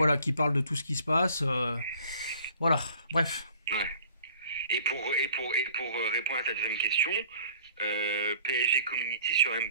qui parle de tout ce qui se passe. Voilà, bref. Ouais. Et pour répondre à ta deuxième question, PSG Community sur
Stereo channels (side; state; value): both; inverted; correlation -0.52